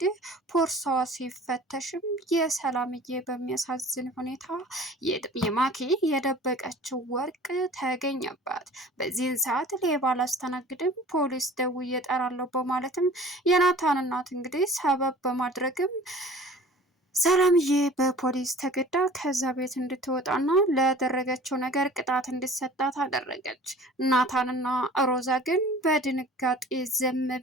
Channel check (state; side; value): normal; both; correlation 0.45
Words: ፖርሳዋ ሲፈተሽም የሰላምዬ በሚያሳዝን ሁኔታ የማኪ የደበቀችው ወርቅ ተገኘባት። በዚህን ሰዓት ሌባ አላስተናግድም ፖሊስ ደውዬ እጠራለሁ በማለትም የናታን እናት እንግዲህ ሰበብ በማድረግም ሰላምዬ በፖሊስ ተገዳ ከዛ ቤት እንድትወጣና ለደረገችው ነገር ቅጣት እንዲሰጣት አደረገች። ናታንና ሮዛ ግን በድንጋጤ ዝም